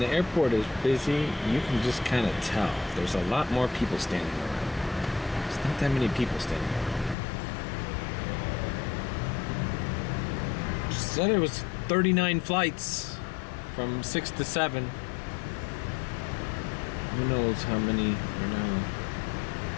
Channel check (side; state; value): right; drops out; at 7.2 s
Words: the airport is busy, you can just kind of tell. There's a lot more people standing around. There's not that many people standing around. Just said it was 39 flights from 6 to 7. Who knows how many, you know,